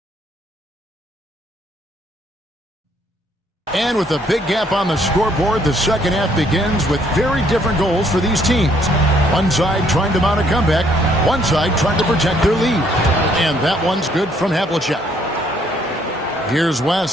And with a big gap on the scoreboard, the second half begins with very different goals for these teams. One side trying to mount a comeback, one side trying to protect their lead. And that one's good from Havlicek. Here's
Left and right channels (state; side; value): normal; both; correlation 0.67